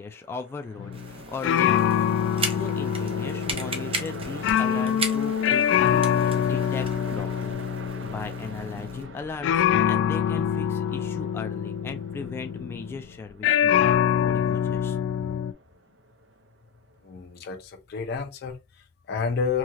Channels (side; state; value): right; quieter; 7.5 dB